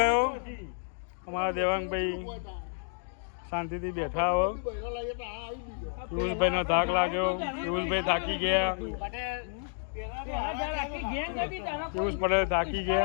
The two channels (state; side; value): silent; right; digital silence